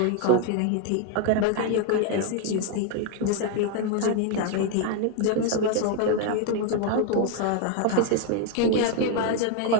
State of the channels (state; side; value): different; both; correlation 0.01